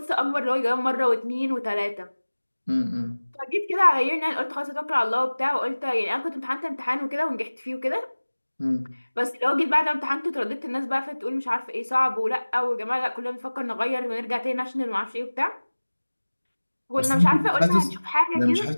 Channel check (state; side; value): inverted; both; correlation -1.00